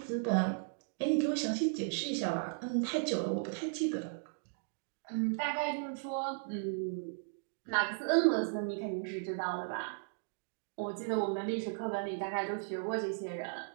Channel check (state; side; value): silent; left; digital silence